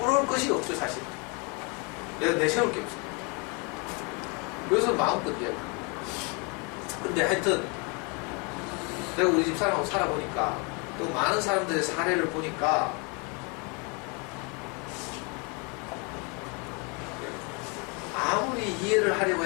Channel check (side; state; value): right; quieter; 32.2 dB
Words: 것이 없죠, 사실. 내가 내세울 게 없어. 그래서 마음껏 이야기. 근데 하여튼, 내가 우리 집 사람하고 살아보니까, 또 많은 사람들의 사례를 보니까, 아무리 이해를 하려고